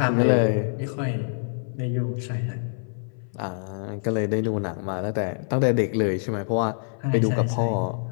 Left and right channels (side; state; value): right; silent; 58 dB below the other